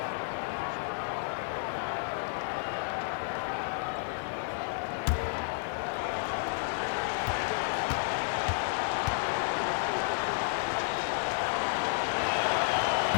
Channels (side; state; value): right; silent; digital silence